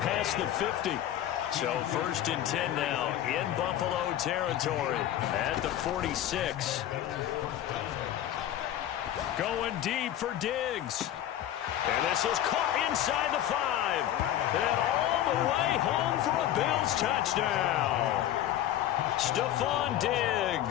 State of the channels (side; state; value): right; quieter; 12.0 dB